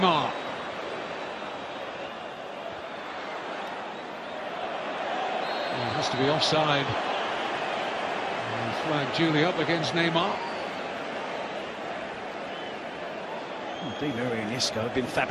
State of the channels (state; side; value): identical; both; correlation 1.00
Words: It has to be offside. Flag duly up against Neymar. Di María and Isco have been